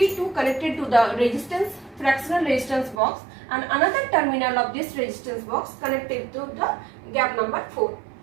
connected to the resistance fractional resistance box, and another terminal of this resistance box connected to the gap number 4.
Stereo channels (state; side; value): drops out; left; at 3.0 s